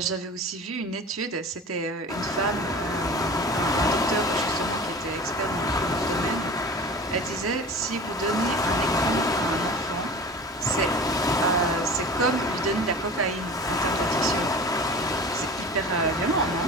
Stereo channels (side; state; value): both; normal; correlation 0.37